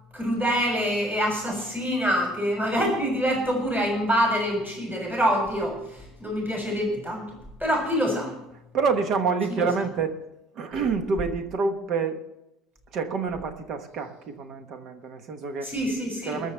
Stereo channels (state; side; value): normal; both; correlation 0.56